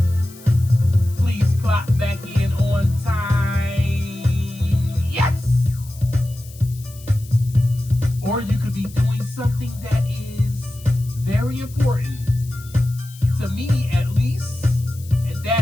Please clock back in on time. Yes! Or you could be doing something that is very important, to me at least, and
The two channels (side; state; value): left; noise; hiss, 21 dB below the sound